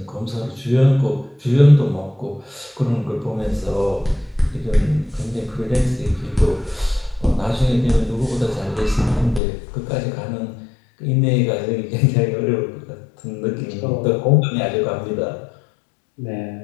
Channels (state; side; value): drops out; right; at 9.4 s